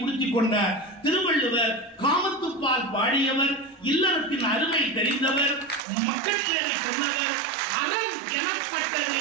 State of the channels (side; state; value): left; drops out; at 5.9 s